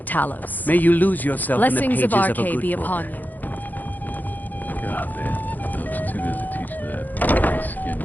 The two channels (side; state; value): right; late; 0.084 ms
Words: Talos. May you lose yourself in the Blessings pages of of a Arcade good be book. upon you. God damn. I was too busy teaching that